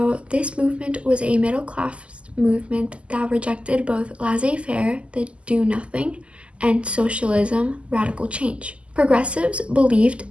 this movement was a middle class movement that rejected both laissez-faire, the do nothing, and socialism, radical change. Progressives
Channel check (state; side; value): late; left; 0.055 ms